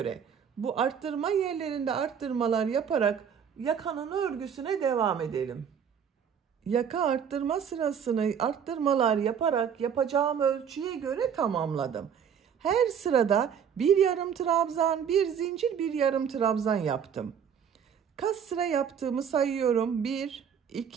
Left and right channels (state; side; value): quieter; left; 7.7 dB